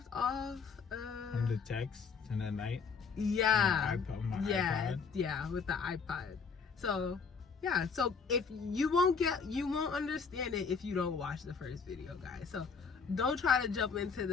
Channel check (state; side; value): quieter; right; 5.5 dB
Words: off on the text and that night. Yeah. iPod. Yeah, with the iPod. So yeah, so if you won't understand it if you don't watch the first video, guys. So don't try to jump into